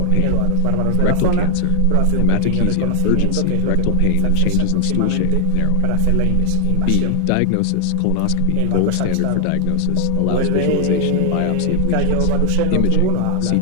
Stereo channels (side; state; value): both; different; correlation 0.00